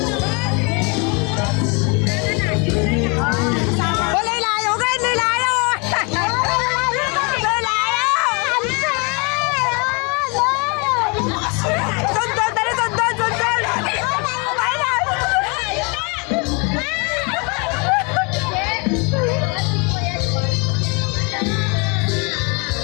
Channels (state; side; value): quieter; right; 32.0 dB